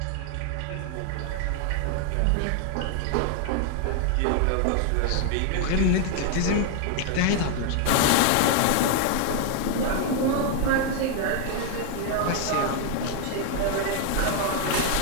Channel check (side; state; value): both; different; correlation 0.00